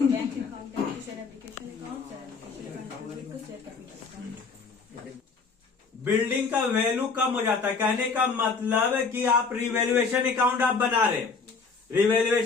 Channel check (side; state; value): right; quieter; 4.8 dB